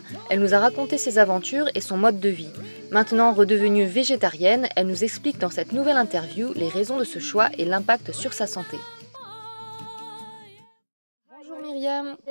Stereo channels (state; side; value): inverted; both; correlation -1.00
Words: elle nous a raconté ses aventures et son mode de vie. Maintenant redevenue végétarienne, elle nous explique dans cette nouvelle interview les raisons de ce choix et l'impact sur sa santé. Bonjour Myriam,